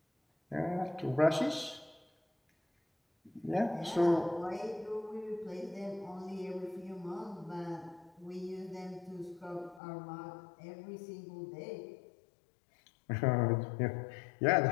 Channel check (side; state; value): right; drops out; at 9.8 s